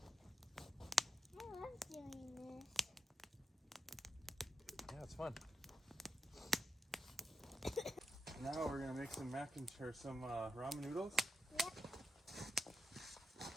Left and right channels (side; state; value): both; normal; correlation 0.86